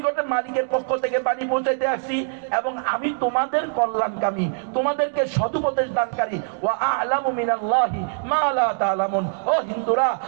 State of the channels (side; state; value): left; silent; digital silence